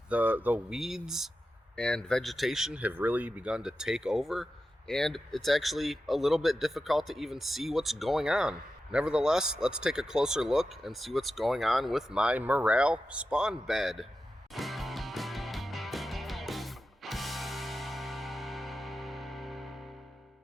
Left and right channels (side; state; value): both; normal; correlation 0.91